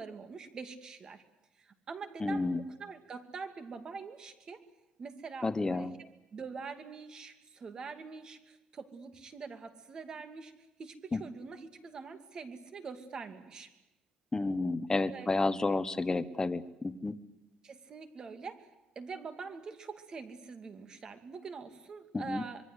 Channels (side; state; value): both; normal; correlation 0.91